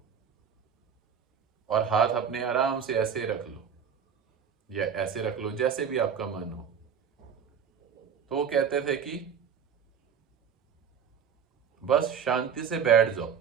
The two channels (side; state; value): left; quieter; 7.4 dB